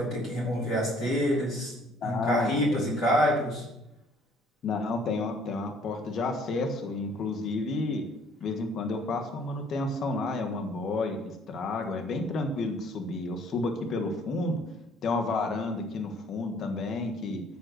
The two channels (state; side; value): normal; both; correlation 0.59